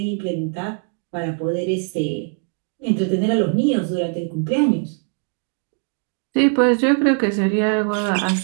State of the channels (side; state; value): left; quieter; 39.3 dB